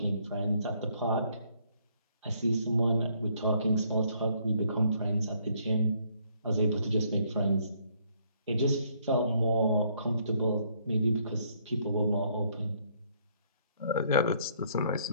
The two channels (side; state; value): both; inverted; correlation -0.67